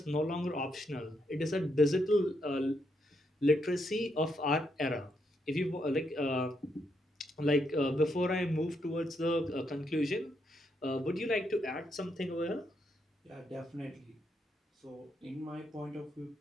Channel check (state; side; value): normal; both; correlation 0.78